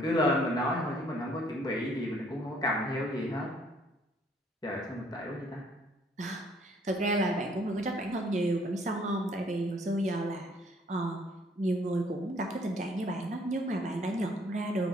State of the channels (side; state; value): both; normal; correlation 0.63